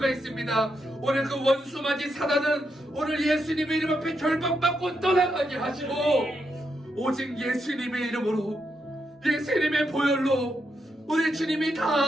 있습니다. 오늘 그 원수마지 사단은 오늘 예수님의 이름 앞에 결박받고 떠나가게 하시고 오직 예수님의 이름으로, 예수님의 보혈로 우리 주님이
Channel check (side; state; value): both; normal; correlation 0.82